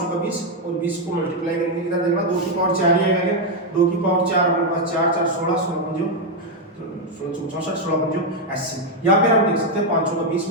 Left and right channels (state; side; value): normal; both; correlation 0.03